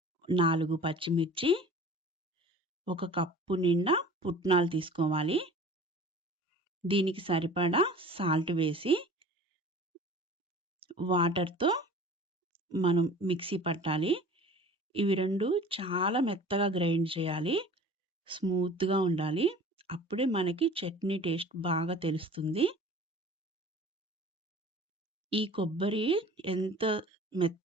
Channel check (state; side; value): normal; both; correlation 0.43